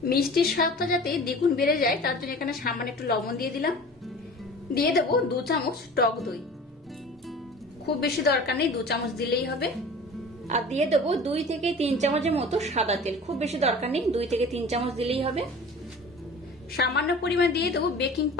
মিষ্টির স্বাদটা যাতে দ্বিগুণ বেড়ে যায় তার জন্য এখানে সামান্য একটু লবণ দিয়ে দিলাম। দিয়ে দেবো 2 চামচ টক দই, খুব বেশি দরকার নেই, 2 চামচ দিলেই হবে। আর দিয়ে দেবো 2 থেকে 3 চামচের মতো সাদা তেল, খুব বেশি দরকার নেই, 2 থেকে 3 চামচ দিলেই হবে। সামান্য পরিমাণ দিয়ে দেবো বেকিং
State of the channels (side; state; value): both; normal; correlation 0.40